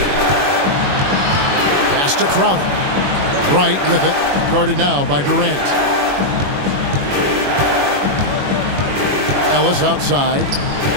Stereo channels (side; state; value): left; late; 21 ms